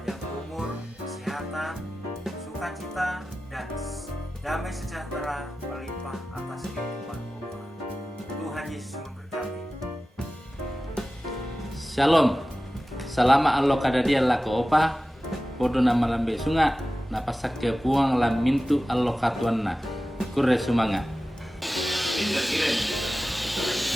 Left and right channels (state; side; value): normal; both; correlation 0.95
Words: umur, kesehatan, sukacita, dan damai sejahtera melimpah atas kehidupan Opa. Tuhan Yesus memberkati. Shalom. Selama Allah kadadia lako Opa, podo nama lambe sunga, napasak ke puang lam mintu Allah katuanna. Kurre sumanga.